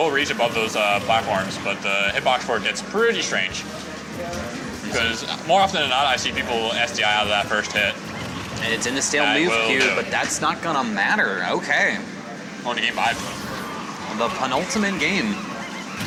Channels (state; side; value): identical; both; correlation 1.00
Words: reach above those platforms, but the hitbox for it gets pretty strange. Because more often than not, I see people SDI out of that first hit. And it's in the stale That move will queue, do. but that's not gonna matter. Okay. On to game 5. The penultimate game.